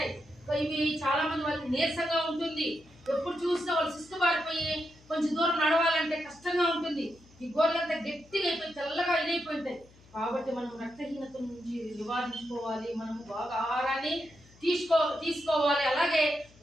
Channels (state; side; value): noise; left; hum, 26 dB below the sound